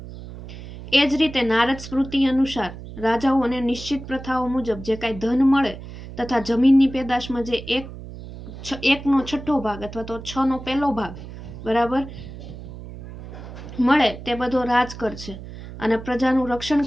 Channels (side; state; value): right; noise; hum, 13 dB below the sound